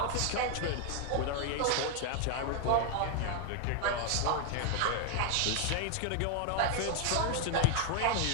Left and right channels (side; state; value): both; different; correlation 0.01